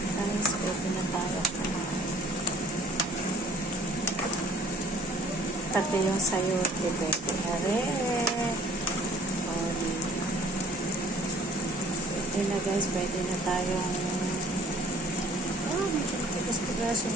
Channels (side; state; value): both; normal; correlation 0.53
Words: guys. Pwede na tayo kumain. Pati yung sayote, pwede na rin. Oh, diba? Pwede na, guys. Pwede na tayong medyo tigas-tigasin